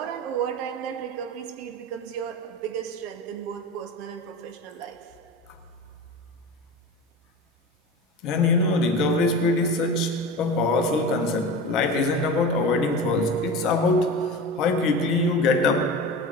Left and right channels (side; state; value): both; normal; correlation 0.31